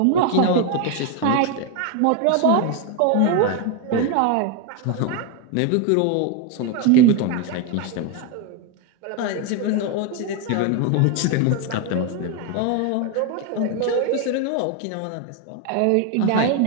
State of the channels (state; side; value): different; both; correlation 0.01